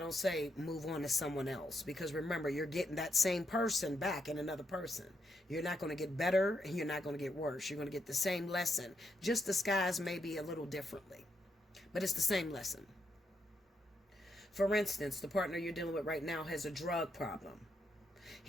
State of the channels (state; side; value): normal; both; correlation 0.80